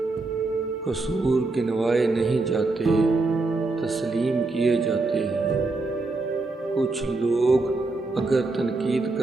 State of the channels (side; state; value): left; quieter; 3.4 dB